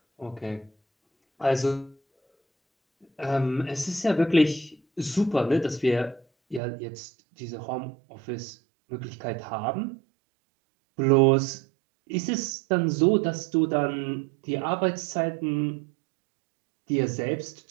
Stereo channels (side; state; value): left; drops out; at 6.6 s